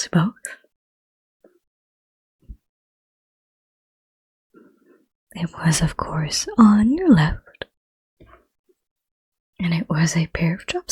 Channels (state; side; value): identical; both; correlation 1.00